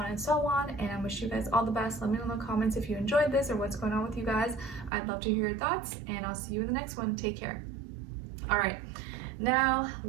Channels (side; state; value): left; drops out; at 4.9 s